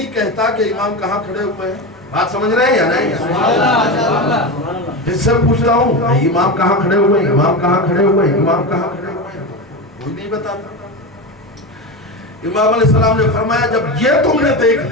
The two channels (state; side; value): normal; both; correlation 0.20